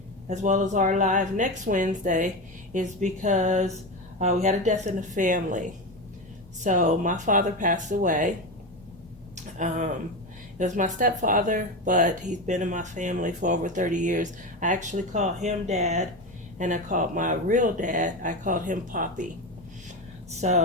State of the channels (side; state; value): both; normal; correlation 0.19